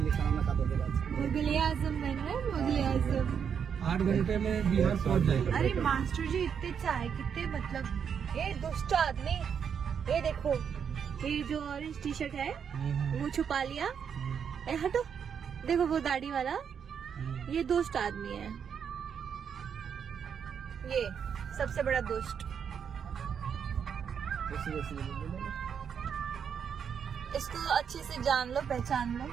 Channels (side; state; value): left; quieter; 7.4 dB